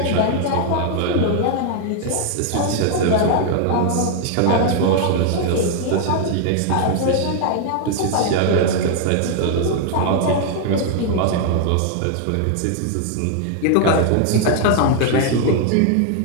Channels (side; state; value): both; different; correlation 0.00